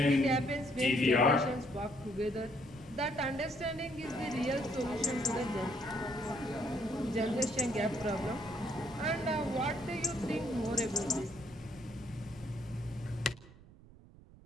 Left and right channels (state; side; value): noise; right; rumble, 22 dB below the sound